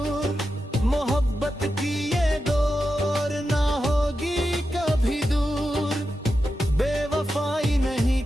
मोहब्बत की ये दौर ना होगी कभी दूर। बेवफाई नहीं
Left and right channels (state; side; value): normal; both; correlation 0.90